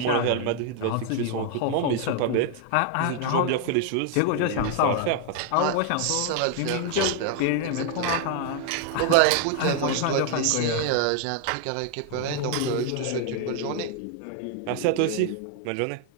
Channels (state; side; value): different; both; correlation 0.00